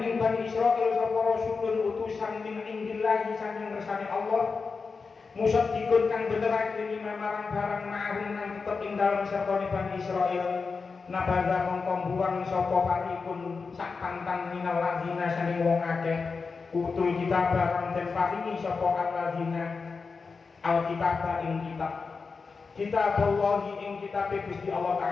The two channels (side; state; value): right; quieter; 4.7 dB